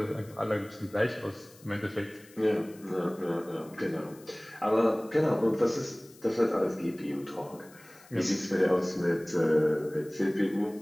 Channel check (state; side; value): noise; left; hiss, 24 dB below the sound